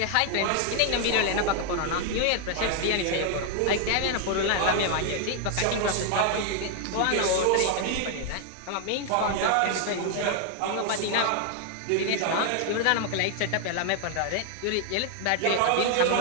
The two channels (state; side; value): different; both; correlation 0.00